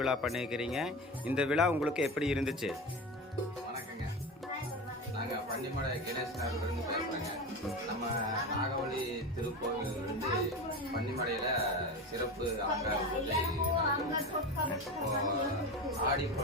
விழா பண்ணியிருக்கிறீங்க. இந்த விழா உங்களுக்கு எப்படி இருந்துச்சு? வணக்கங்க. நாங்கள் பன்னிமலை கணேசனார்லேருந்து பேசுகிறேங்க. நம்ம நாகவழி திருக்கோவிலிருந்து பன்னிமலையில் சிறப்பு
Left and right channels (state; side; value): normal; both; correlation 0.25